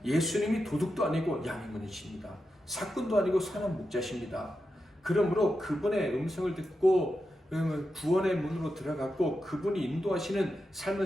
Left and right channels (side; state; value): both; normal; correlation 0.88